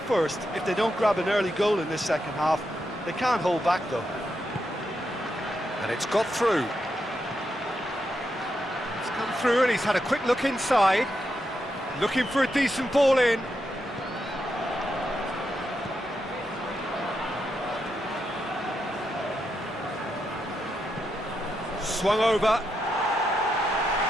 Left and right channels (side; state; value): both; normal; correlation 0.83